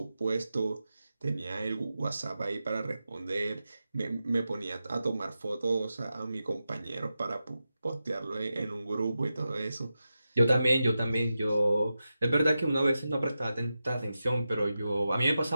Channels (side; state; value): both; inverted; correlation -0.91